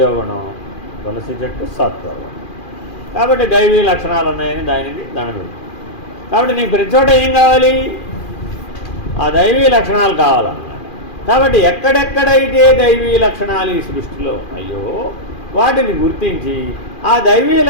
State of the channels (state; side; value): late; right; 2.4 ms